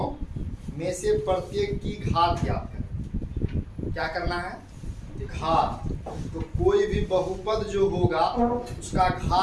में से प्रत्येक की घात ज्ञात करें। क्या करना है? घात। तो कोई भी बहुपद जो होगा उसका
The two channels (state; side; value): identical; both; correlation 1.00